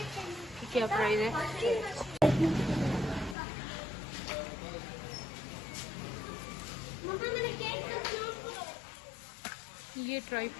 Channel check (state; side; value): drops out; right; at 3.4 s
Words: क्या प्राइस है? ये